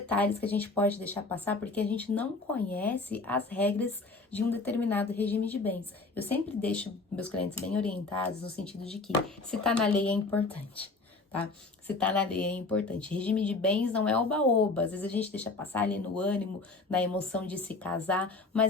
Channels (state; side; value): quieter; right; 3.5 dB